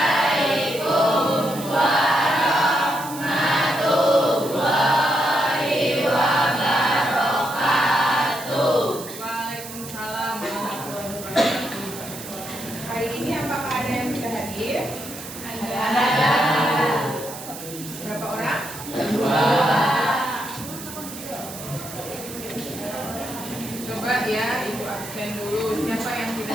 Hari ini apakah ada yang bisa hadir? Ada. Berapa orang? 2. Coba ya, Ibu absen dulu. Siapa yang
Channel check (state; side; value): noise; right; hiss, 12 dB below the sound